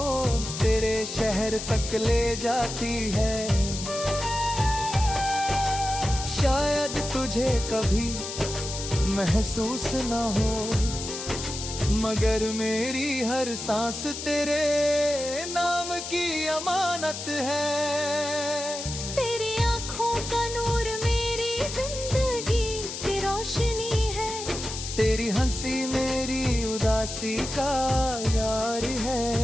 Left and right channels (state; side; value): noise; left; hiss, 7 dB below the sound